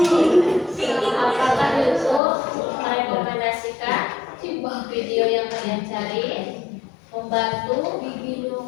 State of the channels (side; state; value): right; drops out; at 2.2 s